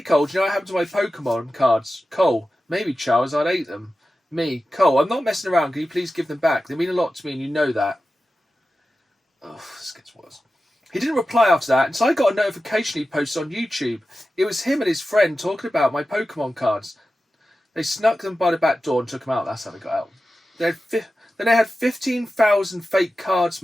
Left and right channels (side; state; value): both; normal; correlation 0.93